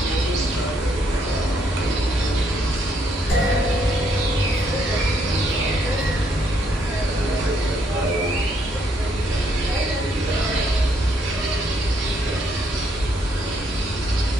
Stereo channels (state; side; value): normal; both; correlation 0.72